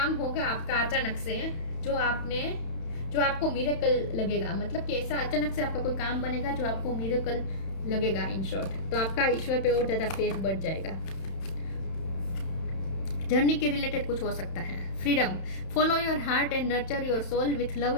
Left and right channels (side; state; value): right; late; 31 ms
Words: होगा आपका अचानक से जो आपको मिरेकल लगेगा। मतलब कि ऐसा अचानक से आपका कोई काम बनेगा जो आपको मिरेकल लगेगा। इन शॉर्ट, तो आपका ईश्वर पे और ज्यादा फेथ बढ़ जाएगा। जर्नी के रिलेटेड कुछ हो सकता है। Freedom, follow your heart and nurture your soul with love